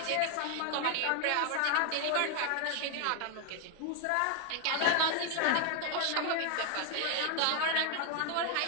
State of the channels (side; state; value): both; different; correlation 0.00